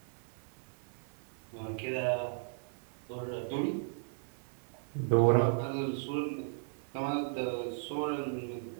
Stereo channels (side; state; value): left; silent; digital silence